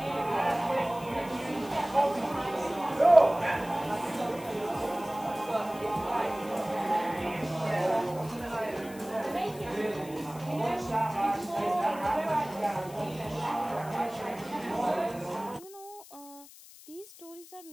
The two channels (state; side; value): noise; left; hiss, 19 dB below the sound